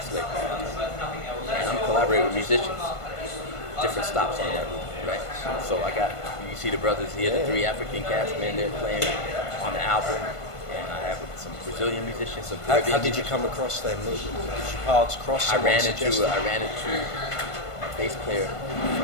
slavery. And I'm collaborating with musicians, different stops on that route, right? So you see the brothers here, the 3 African cats, man, they're playing on the album. And I have some Brazilian musicians, some Caribbean. How did you come across them? Did your paths cross? I ran into a bass player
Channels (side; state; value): right; late; 1.5 ms